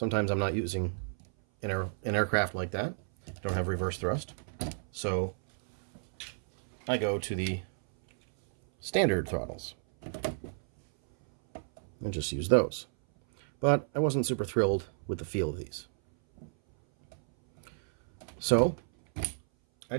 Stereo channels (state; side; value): silent; left; 57 dB below the other